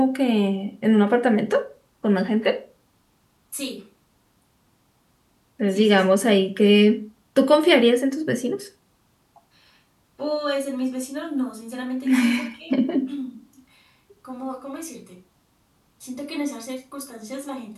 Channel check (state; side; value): identical; both; correlation 1.00